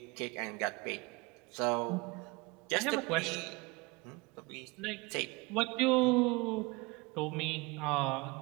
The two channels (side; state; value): left; quieter; 25.6 dB